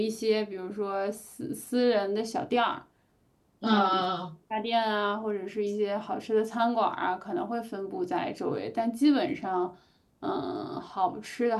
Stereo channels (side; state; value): both; identical; correlation 1.00